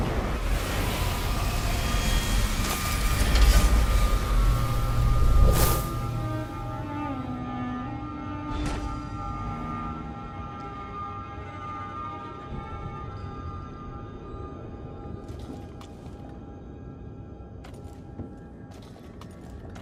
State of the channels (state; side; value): identical; both; correlation 1.00